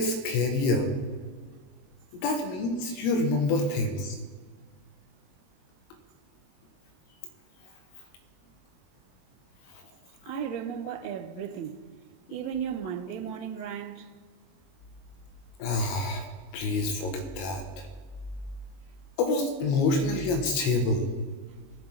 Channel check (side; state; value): right; late; 22 ms